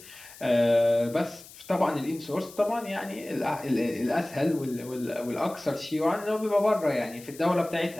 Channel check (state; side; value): noise; left; hiss, 19 dB below the sound